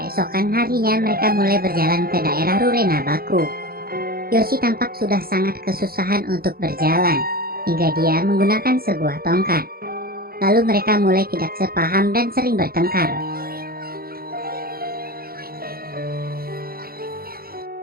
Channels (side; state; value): left; late; 0.44 ms